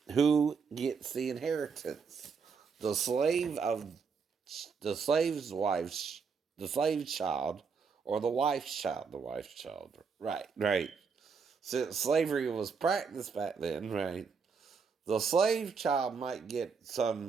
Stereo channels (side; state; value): left; quieter; 5.6 dB